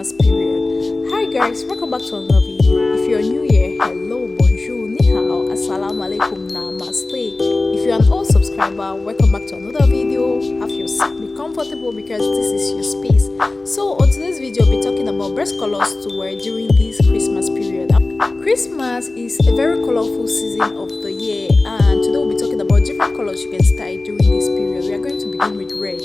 period. Hi guys, welcome back to another video. If you're new here, hello, bonjour, ni hao, assalamu alaikum, namaste. If you're an old subscriber, welcome back to another video. Have your seat, be comfortable because this is your space. So on today's video, we'll be talking about best colors to wear during this Christmas period. Christmas is a very colorful season of the year, and today we'll be talking about different colors you can style during this period. We are going to begin with red.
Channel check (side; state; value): right; quieter; 3.1 dB